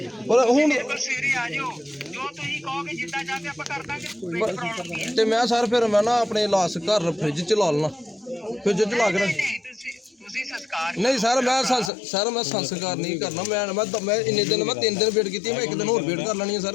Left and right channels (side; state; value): right; drops out; at 11.9 s